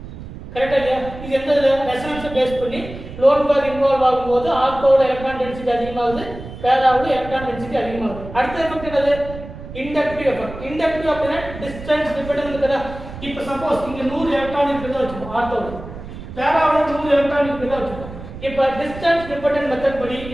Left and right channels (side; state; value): right; noise; rumble, 13 dB below the sound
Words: கரெக்டா இல்லையா? இது எந்த ரெசனன்ஸை பேஸ் பண்ணி லோன் பேர் இன்வால்வ் ஆகும்போது ஆர்த்தோட எலக்ட்ரான் டென்சிட்டி அதிகமாகுது, பேராவோட எலக்ட்ரான் டென்சிட்டி அதிகமாகுது. அடுத்த எஃபெக்ட் என்னது? Inductive effect. இண்டக்டிவ் அப்படினா டிஸ்டன்ஸ் டிபெண்டன்ட் இருக்குதா? இப்போ சப்போஸ் இங்க 100 எலக்ட்ரான் இருக்குதா வச்சுப்போம் ஆர்த்தோல. பேராவுல 100 எலக்ட்ரான் இருக்குதா வச்சுப்போம். இப்போ டிஸ்டன்ஸ் டிபெண்டன்ட் மெத்தட் படி